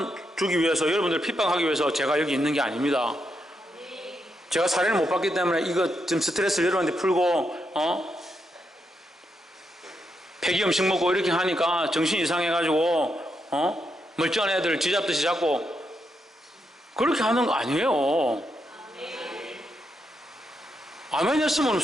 주기 위해서 여러분들을 핍박하기 위해서 제가 여기 있는 게 아닙니다. 제가 사례를 못 받기 때문에 이거 좀 스트레스를 여러분한테 풀고 폐기 음식 먹고 이렇게 하니까 정신 이상해가지고 멀쩡한 애들 쥐잡듯이 잡고 그렇게 하는 거 아니에요. 아멘 했으면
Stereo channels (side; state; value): both; normal; correlation 0.82